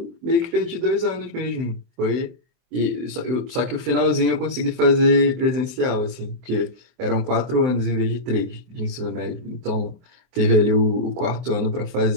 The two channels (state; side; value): late; left; 23 ms